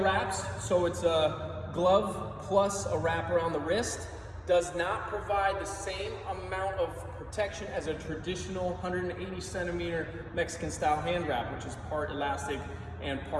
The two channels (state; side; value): identical; both; correlation 1.00